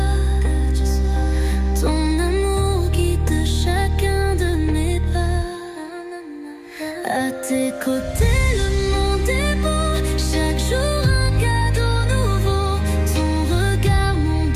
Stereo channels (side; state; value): both; identical; correlation 1.00